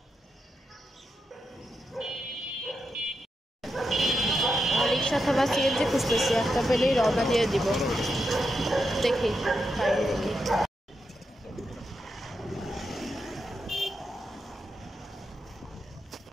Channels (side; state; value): both; normal; correlation 0.85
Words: রিক্সা অথবা সিএনজি খুঁজতেছি, একটা পেলেই রওনা দিয়ে দিব। দেখি পাই নাকি।